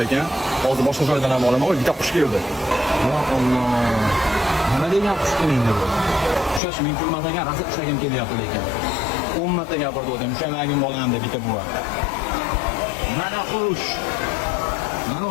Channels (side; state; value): right; drops out; at 6.6 s